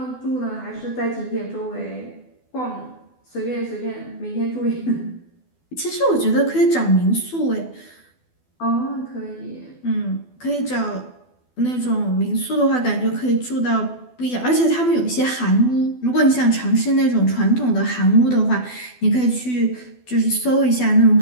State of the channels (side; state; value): right; late; 12 ms